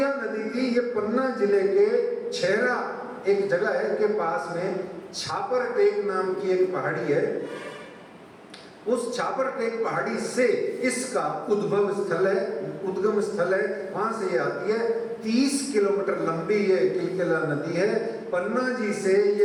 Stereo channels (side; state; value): both; identical; correlation 1.00